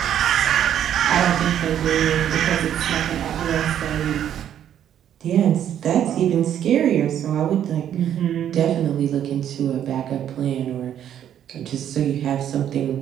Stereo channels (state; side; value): quieter; left; 10.1 dB